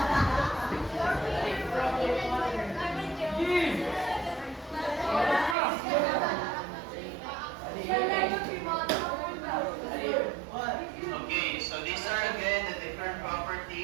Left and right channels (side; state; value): left; drops out; at 5.6 s